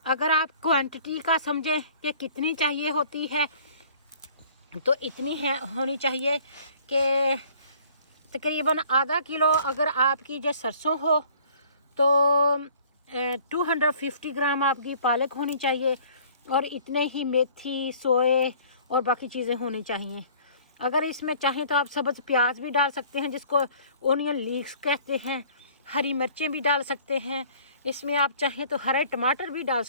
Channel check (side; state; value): both; inverted; correlation -0.53